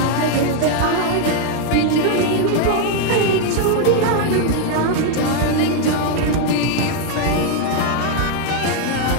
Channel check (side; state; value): both; different; correlation 0.01